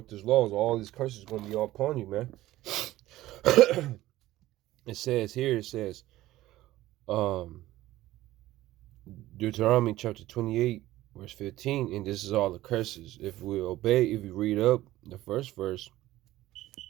these laws, all these curses are going to be all upon you, man. It says, Deuteronomy chapter 28, verse 15, and this is all the curses. If we obey, if we read up the first verse,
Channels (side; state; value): left; quieter; 16.0 dB